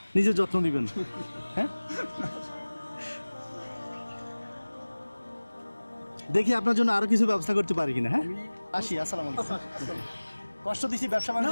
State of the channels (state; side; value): inverted; both; correlation -1.00